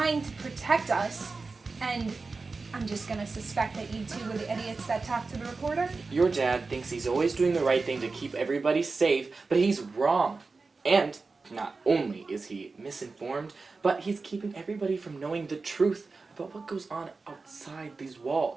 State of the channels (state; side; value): quieter; left; 4.0 dB